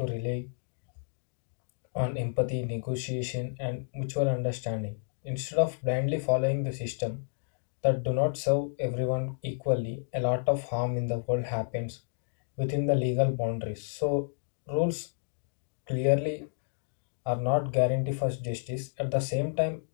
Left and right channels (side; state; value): right; silent; digital silence